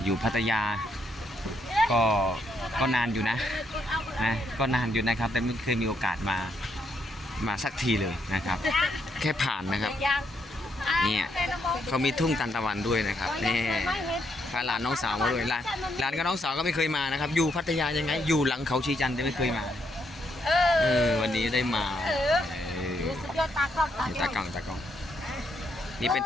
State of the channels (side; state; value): both; normal; correlation 0.76